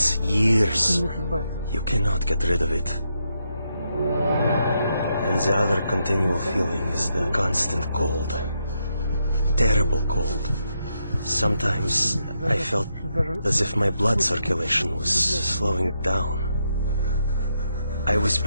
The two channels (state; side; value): inverted; both; correlation -0.81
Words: years. You cannot get rid of it. And the other continual feeling is the constant cold. Terrible cold. Sometimes I felt as if my blood circulation was slowing down. I was